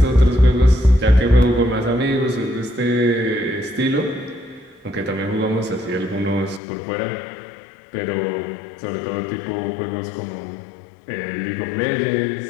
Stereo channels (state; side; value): drops out; right; at 6.6 s